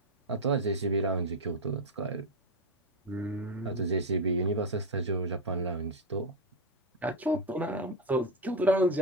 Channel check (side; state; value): both; normal; correlation 0.08